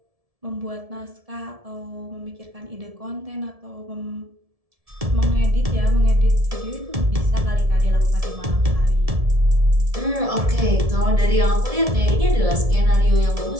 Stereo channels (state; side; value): late; left; 1.7 ms